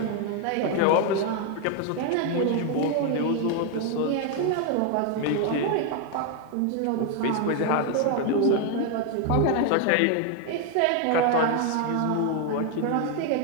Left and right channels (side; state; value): both; different; correlation 0.01